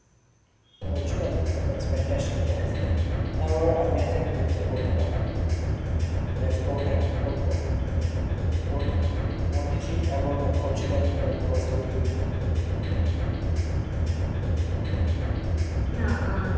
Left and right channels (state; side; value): identical; both; correlation 1.00